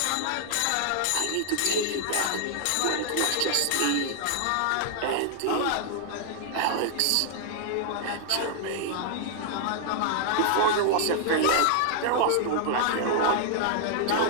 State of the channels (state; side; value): different; both; correlation -0.01